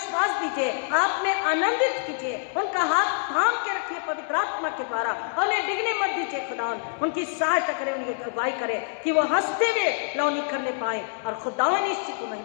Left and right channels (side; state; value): right; silent; 61 dB below the other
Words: दीजिए, आप में आनंदित कीजिए, उनका हाथ थाम के रखिए पवित्र आत्मा के द्वारा, और उन्हें डिगने मत दीजिए। खुदा उनकी सहायता करे, उनकी अगुवाई करे कि वो हंसते हुए लौनी करने पाए और खुदा निश्चित को